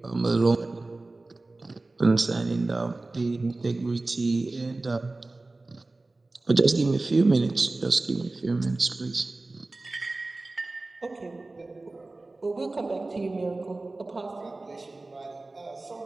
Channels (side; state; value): left; quieter; 3.1 dB